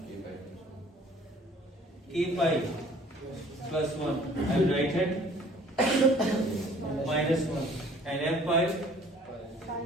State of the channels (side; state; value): both; normal; correlation 0.53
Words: K pi plus 1, and right hand minus 1, and f pi